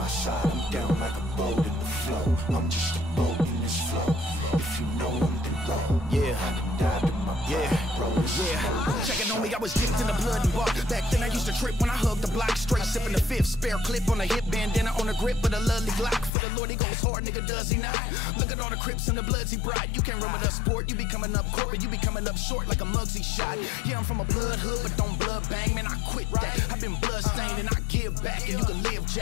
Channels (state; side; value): drops out; right; at 16.3 s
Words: side, I'm down like a boat in the flow. I'm just a boat in this flow. If you know I'm the road, Yeah. I done died in my pride, bro, this is more than a Checking show. on me, I was dipped in the blood and bark. Back then I used to trip when I hugged the block. Straight sipping the fifth, spare clip on the hip, bandana on the grip with a lovely Glock. For the Lord he goes hard, nigga, does he not? Look at all the Crips and the Bloods he brought. You can't run with us sport, you be coming up corporate, you be coming up short like a Muggsy shot. Yeah, I'm from a blood hood, but don't blood bang, man, I quit that. I've been blood stained and I give back, and you can live,